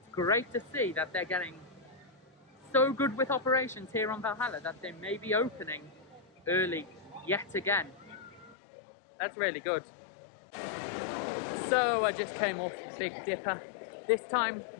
great to see that they're getting so good with operations here on Valhalla that they may be opening early yet again. That's really good. So I just came off Big Dipper. This time,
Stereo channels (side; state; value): right; drops out; at 8.6 s